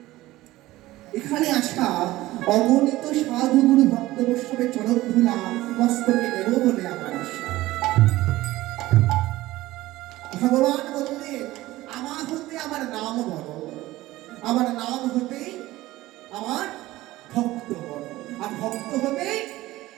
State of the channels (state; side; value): quieter; left; 17.2 dB